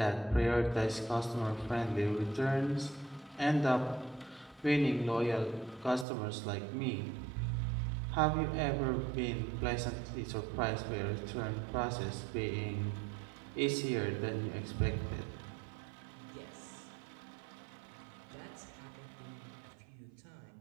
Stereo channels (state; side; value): drops out; left; at 6.1 s